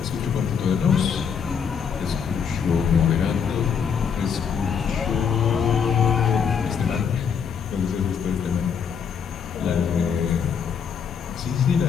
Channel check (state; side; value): quieter; right; 6.9 dB